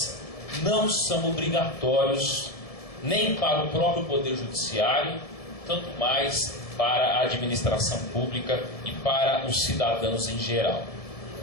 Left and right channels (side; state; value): right; late; 1.7 ms